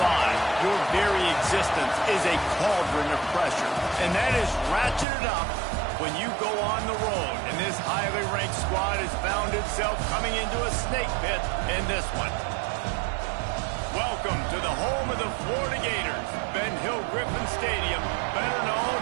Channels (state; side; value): drops out; left; at 5.1 s